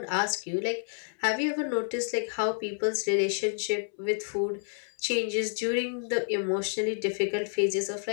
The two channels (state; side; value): silent; right; 58 dB below the other